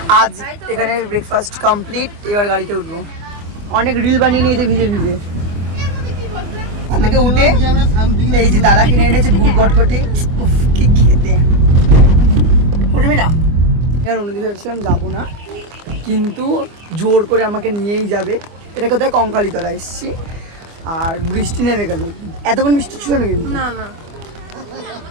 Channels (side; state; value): left; late; 24 ms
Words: আজ এখানে ব্রেকফাস্ট কমপ্লিট, এবার গাড়িতে উঠবো। অনেক রিল বানিয়ে নিয়েছে ভিজে ভিজে। ওখান থেকে উঠে এই যে দাদা কিনে এনেছে গুড় গটকটি, উফ কি খেতে। উঠবি না? আর অন্যদিকে ভেবেছিলাম যাবো না, কিন্তু জোর করে আমাকে নিয়েই যাবে। এটা কোথায়? কঙ্কালীতলা এসেছি, আর বৃষ্টি নেমে গেল। এতক্ষণ বৃষ্টি ছিল না কিন্তু, না না।